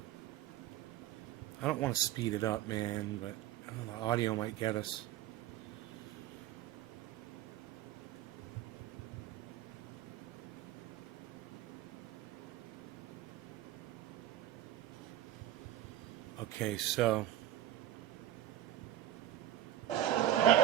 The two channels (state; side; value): quieter; left; 12.6 dB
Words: I don't want to speed it up, man, but I don't know, the audio might get us. Okay, so. Oh,